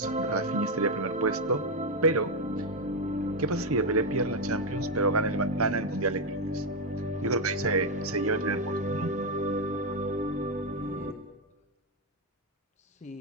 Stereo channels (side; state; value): both; normal; correlation 0.04